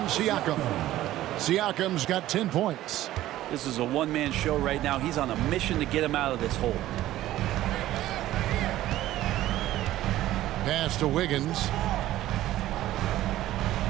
Siakam. Siakam's got 10 points. This is a one-man show right now. He's on a mission to get him out of this hole. Pass to Wiggins.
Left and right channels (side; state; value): left; quieter; 14.5 dB